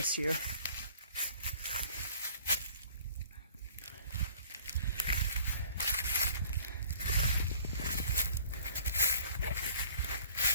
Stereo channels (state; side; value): inverted; both; correlation -0.51